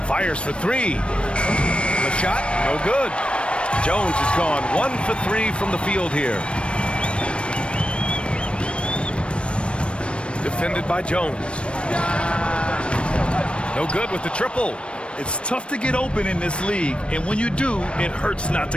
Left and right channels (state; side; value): late; right; 0.059 ms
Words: Fires for three. The shot, no good. Jones is gone 1 for 3 from the field here. Defended by Jones. No good with the triple. It's tough to get open in this league, and when you do, it hurts not to